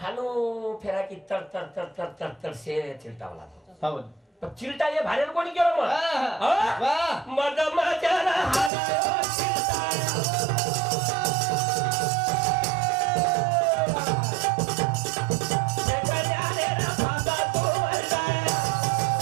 हानो फेरा की तर तर तर तर तर तर से चिलटावला हा वनी पण चिलटा हे भाड्यानं कोणी केलं मग हा? वा मद माझ्याला हानो चिलटा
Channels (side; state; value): left; drops out; at 8.7 s